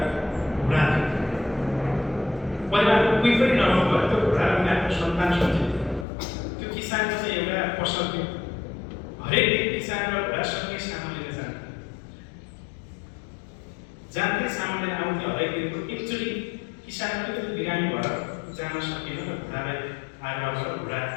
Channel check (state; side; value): drops out; right; at 6.1 s